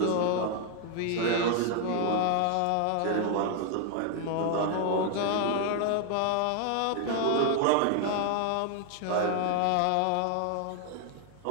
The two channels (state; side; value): different; both; correlation 0.00